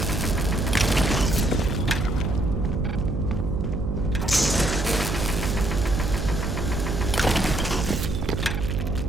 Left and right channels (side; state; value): right; noise; hum, 3 dB below the sound